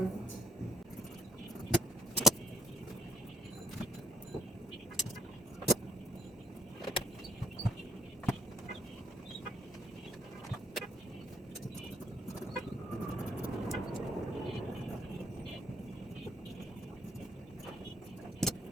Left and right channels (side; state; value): both; normal; correlation 0.66